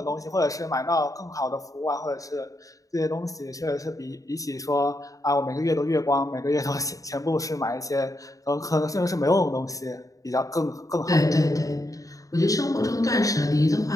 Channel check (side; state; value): right; late; 0.16 ms